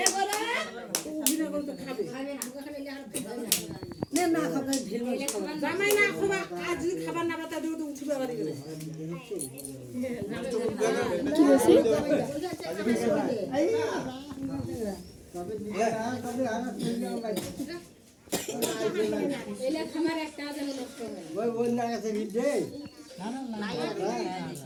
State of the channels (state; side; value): identical; both; correlation 1.00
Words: নে না খাবে ঢেল মরিচ খাবে জামাই না খুবা আজ যদি খাবার না বাতা দিও তো উঠিবে বাড়ি গেলে কি বলছি তবে দিয়ে তবে আর ফিরে যাও ভাই ওই না আছে ভিড়ে